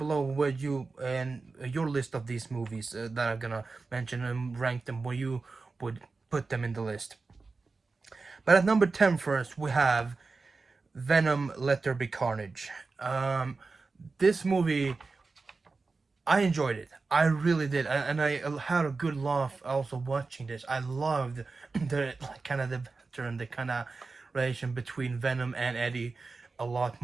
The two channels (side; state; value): left; quieter; 4.0 dB